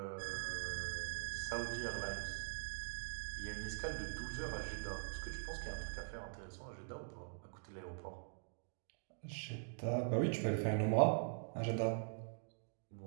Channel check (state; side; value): silent; left; digital silence